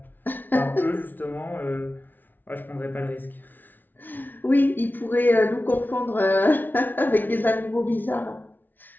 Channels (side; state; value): right; late; 0.088 ms